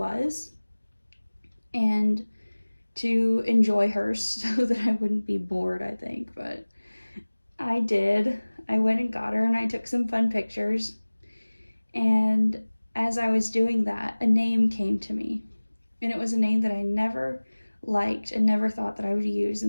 and to enjoy her so that I wouldn't be bored, I think. But I did. I went and got her and I took some fun pictures. And as I was doing that, a name came to me. And it was a name that I never liked and never thought that I would use,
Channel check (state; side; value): inverted; both; correlation -1.00